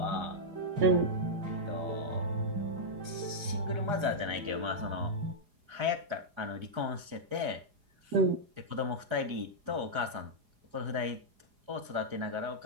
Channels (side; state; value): left; late; 4.8 ms